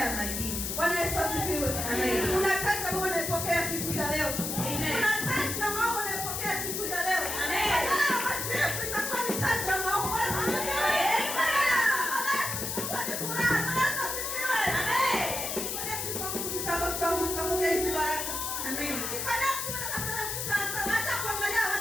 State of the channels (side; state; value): left; noise; hiss, 3 dB below the sound